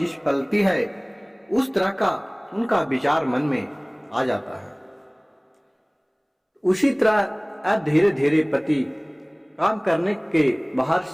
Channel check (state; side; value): identical; both; correlation 1.00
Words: पलती है उस तरह का उनका विचार मन में आ जाता है। उसी तरह अब धीरे धीरे पति काम करने के बाहर